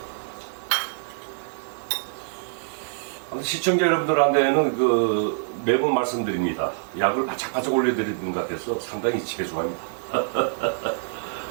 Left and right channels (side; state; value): left; silent; 62 dB below the other